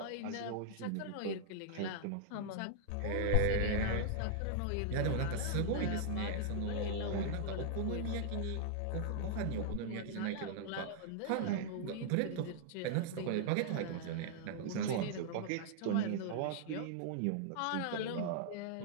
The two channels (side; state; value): both; different; correlation -0.01